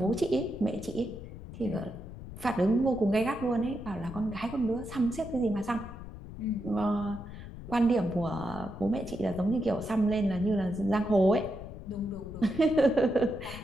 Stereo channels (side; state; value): left; noise; rumble, 12 dB below the sound